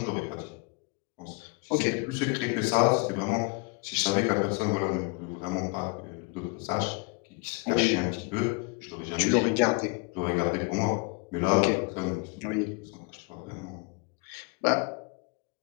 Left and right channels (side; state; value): right; quieter; 29.3 dB